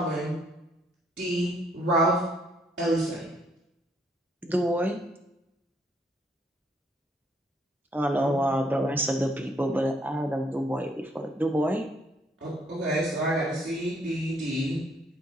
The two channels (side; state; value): both; normal; correlation 0.68